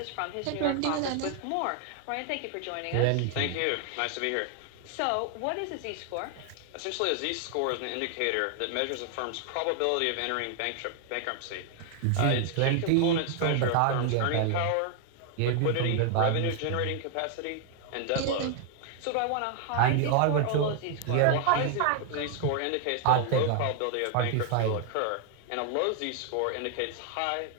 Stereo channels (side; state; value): both; different; correlation 0.00